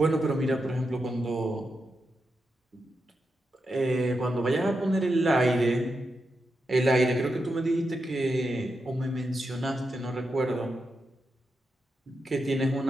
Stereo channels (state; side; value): normal; both; correlation 0.87